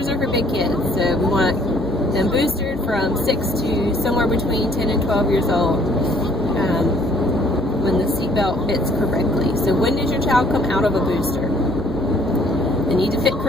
are for big kids, so we want them boosted from 6 to somewhere between 10 and 12 years old. When the seatbelt fits correctly. So when does your child come out of a booster? They need to fit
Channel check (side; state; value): both; normal; correlation 0.60